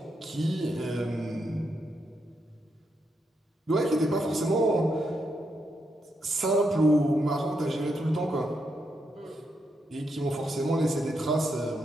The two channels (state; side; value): normal; both; correlation 0.81